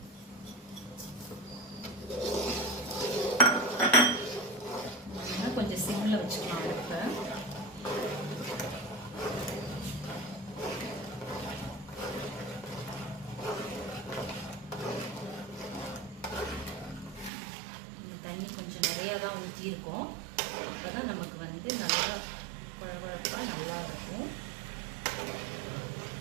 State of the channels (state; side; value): drops out; left; at 17.3 s